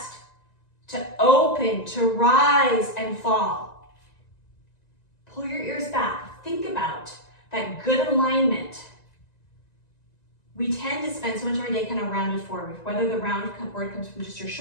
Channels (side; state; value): right; late; 1.9 ms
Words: to open, to rise and fall. Pull your ears back. Think about that good alignment. We tend to spend so much of our day kind of rounded forward, whether the round forward comes from just your